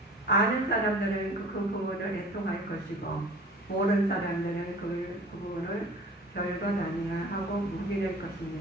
아는 사람들은 그 부분을 애통할 것이고 모르는 사람들은 그 부분을 별것 아니야 하고 묵인할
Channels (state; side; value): normal; both; correlation 0.44